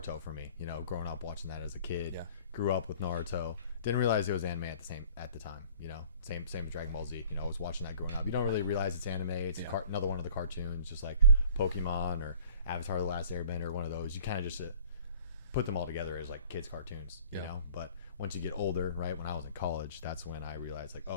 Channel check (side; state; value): both; inverted; correlation -0.51